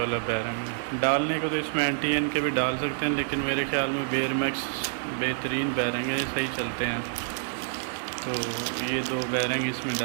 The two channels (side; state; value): left; silent; 60 dB below the other